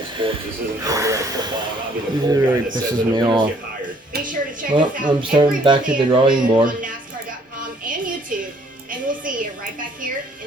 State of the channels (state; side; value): normal; both; correlation 0.62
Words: sports. This isn't football. I mean, Pisses me off. Be sure to check Well, us out I'm starting every back to the drawing board on NASCAR.com and YouTube, and we'll see you right back here